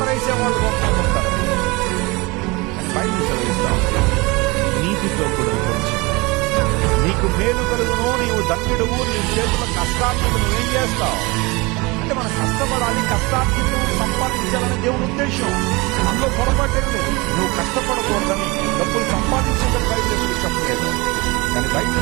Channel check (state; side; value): quieter; left; 24.9 dB